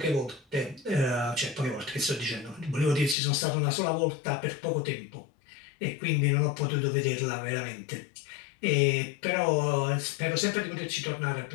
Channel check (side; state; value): right; drops out; at 3.2 s